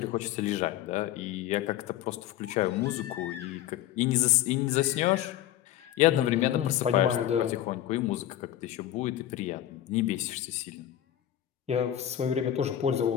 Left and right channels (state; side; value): quieter; right; 12.1 dB